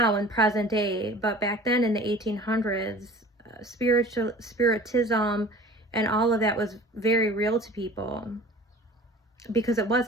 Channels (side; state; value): both; normal; correlation 0.43